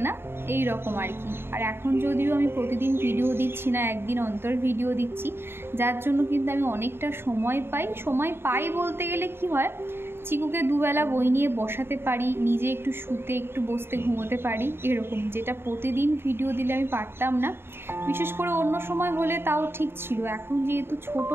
না, এই রকম আর কি। আর এখন যদিও আমি প্রতিদিন ভিডিও দিচ্ছি না, একদিন অন্তর ভিডিও দিচ্ছি, যার জন্য কিন্তু আমি অনেকটা সময় পাই বলতে গেলে কি হয়, চিকুকে দুবেলা বই নিয়ে বসাতে পারি, নিজে একটু শুতে একটু বসতে ঘুমোতে পারি, এরকম, যেটা প্রতিদিন ভিডিও দিলে আমি পারতাম না। বিশেষ করে অন্য সময় হলে তাও ঠিক ছিল, এখন যেহেতু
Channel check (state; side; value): late; left; 0.11 ms